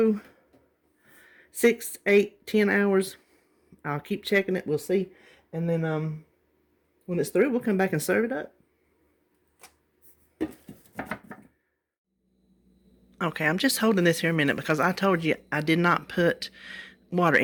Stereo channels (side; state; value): both; identical; correlation 1.00